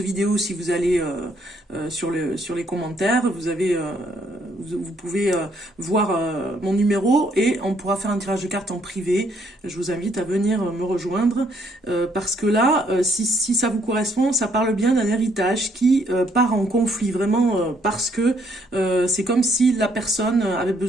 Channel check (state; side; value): normal; both; correlation 0.69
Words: Si vous allez sur les commentaires, vous pouvez voir mon numéro et on pourra faire un tirage de cartes en privé. Je vous invite à venir me rejoindre parce que là, si ça vous correspond, ça parle bien d'un héritage qui part en conflit, vraiment parce que c'est comme si la personne avait